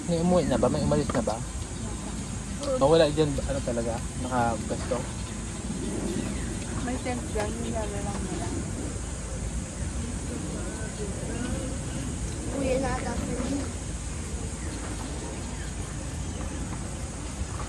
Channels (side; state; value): both; identical; correlation 1.00